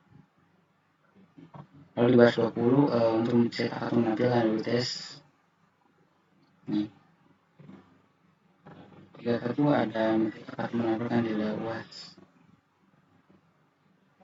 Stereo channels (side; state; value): both; identical; correlation 1.00